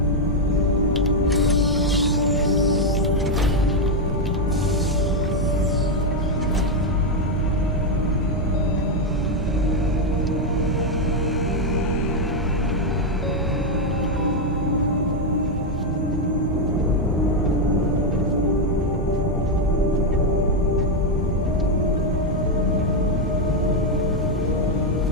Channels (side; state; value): both; normal; correlation 0.03